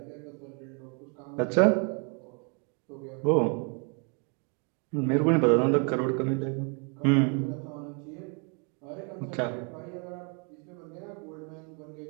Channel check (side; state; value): left; quieter; 36.8 dB